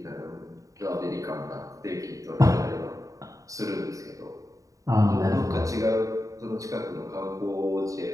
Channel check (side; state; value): left; late; 0.16 ms